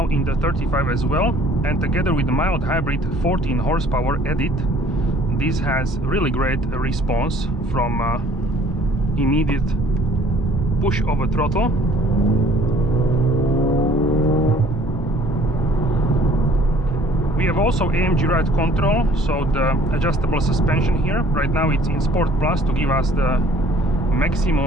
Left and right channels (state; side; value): normal; both; correlation 0.55